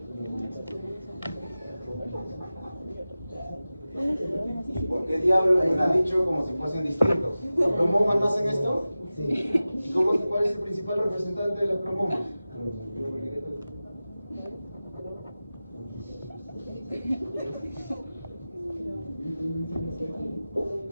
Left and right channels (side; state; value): both; inverted; correlation -0.95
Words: ¿Por qué diablos me han dicho como si fuesen distintos? ¿Los cromomas no hacen esto? ¿Y cuál es el principal representante de los cromomas?